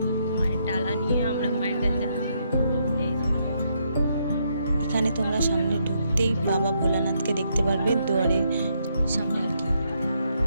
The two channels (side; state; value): both; inverted; correlation -0.76